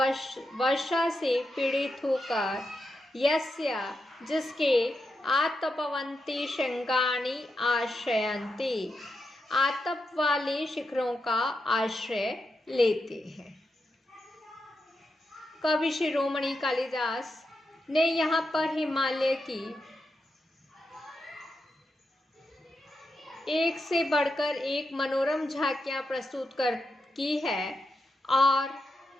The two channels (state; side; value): normal; both; correlation 0.86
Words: वर्षा से पीड़ित होकर, यस्य जिसके, आतपवंती श्रृंगाणि आश्रयन्ति आतप वाले शिखरों का आश्रय लेते हैं। कवि शिरोमणि कालिदास ने यहाँ पर हिमालय की एक से बढ़कर एक मनोरम झांकियां प्रस्तुत की है और